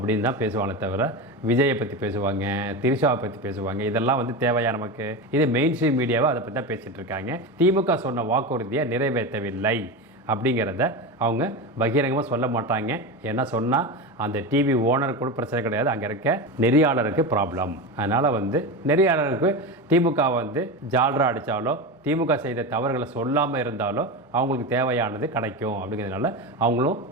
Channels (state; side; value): normal; both; correlation 0.21